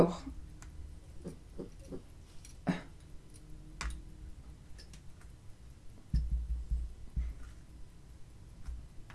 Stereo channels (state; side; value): identical; both; correlation 1.00